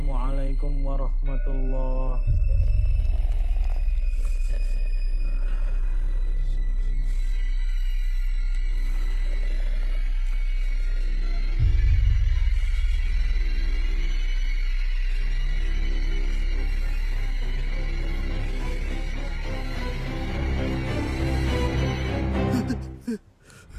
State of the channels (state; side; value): identical; both; correlation 1.00